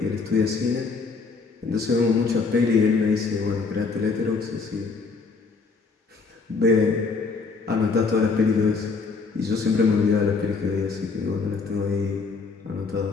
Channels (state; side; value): quieter; right; 4.5 dB